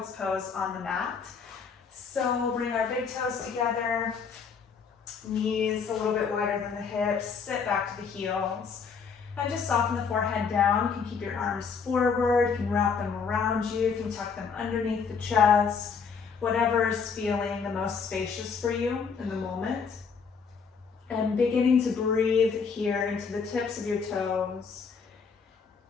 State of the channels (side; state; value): right; quieter; 5.8 dB